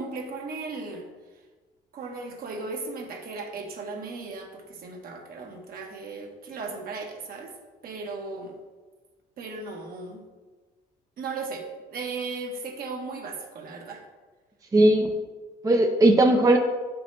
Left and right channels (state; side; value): normal; both; correlation 0.71